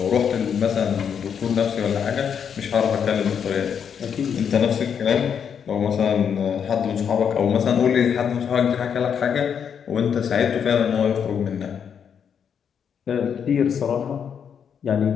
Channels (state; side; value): quieter; right; 7.6 dB